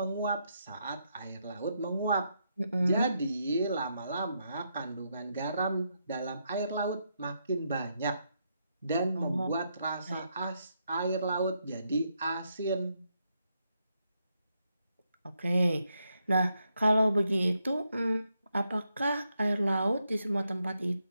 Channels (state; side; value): inverted; both; correlation -0.80